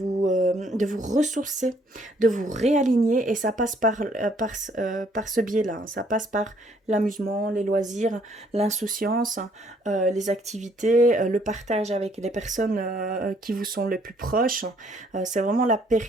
ressourcer, de vous réaligner, et ça passe par ce biais-là, hein. Ça passe par l'amusement, les loisirs, l'insouciance, les activités, le partage avec les personnes qui vous sont les plus proches. C'est vraiment la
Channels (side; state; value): both; normal; correlation 0.65